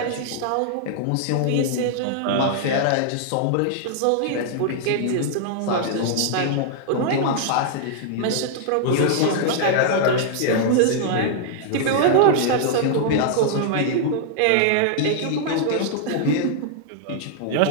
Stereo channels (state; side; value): different; both; correlation -0.01